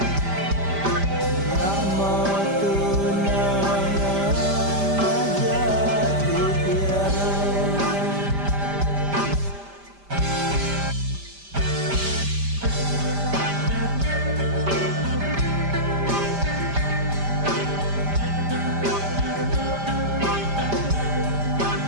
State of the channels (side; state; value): left; late; 5.0 ms